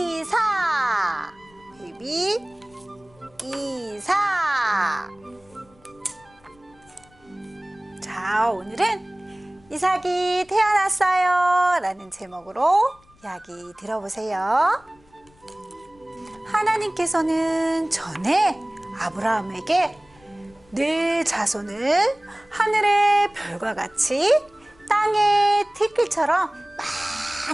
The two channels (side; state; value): left; noise; rumble, 30 dB below the sound